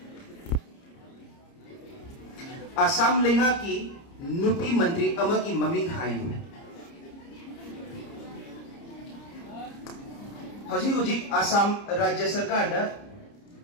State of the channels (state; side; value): late; right; 30 ms